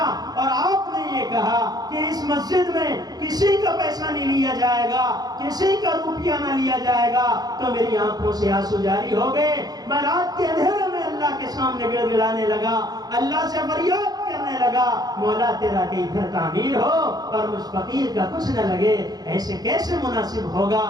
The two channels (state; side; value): late; left; 0.19 ms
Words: اور آپ نے یہ کہا کہ اس مسجد میں کسی کا پیسہ نہیں لیا جائے گا، کسی کا روپیہ نہ لیا جائے گا، تو میری آنکھوں سے آنسو جاری ہو گئے۔ میں رات کے اندھیرے میں اللہ کے سامنے گڑ گڑانے لگا، اللہ سے فریاد کرنے لگا مولا تیرا کہ ادھر تعمیر ہو اور مجھ فقیر کا کچھ نہ لگے، ایسے کیسے مناسب ہوگا؟